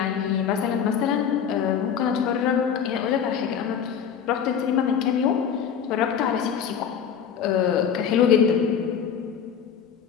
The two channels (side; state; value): right; quieter; 7.7 dB